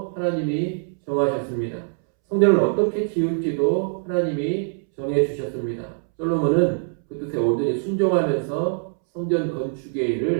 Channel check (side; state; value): left; silent; 63 dB below the other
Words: 하나님이 정하셨습니다. 성전을 어떻게 지을지도 하나님이 정해주셨습니다. 솔로몬은 그 뜻에 온전히 순종하면서 성전 건축의